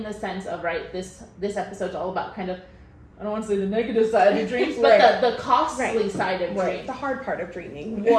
the sense of this episode's all about kind of, I don't want to say the negative side of dreams, but the costly side of dreams, the hard part of dreaming.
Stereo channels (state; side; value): identical; both; correlation 1.00